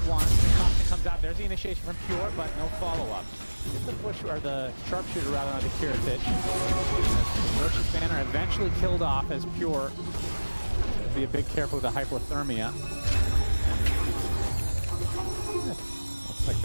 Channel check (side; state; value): both; inverted; correlation -1.00